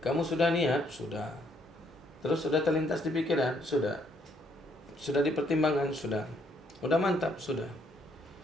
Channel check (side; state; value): both; normal; correlation 0.70